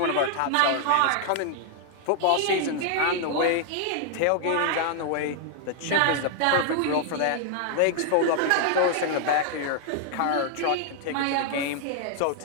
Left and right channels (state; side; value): different; both; correlation 0.00